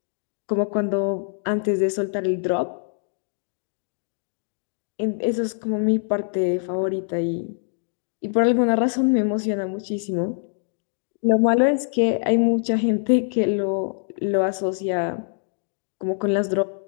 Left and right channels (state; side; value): silent; right; digital silence